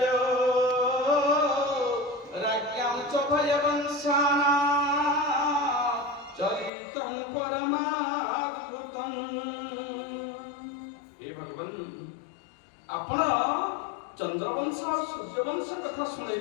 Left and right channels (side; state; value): right; drops out; at 6.7 s